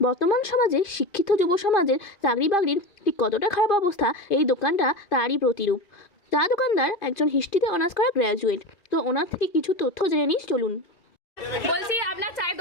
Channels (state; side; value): late; right; 2.4 ms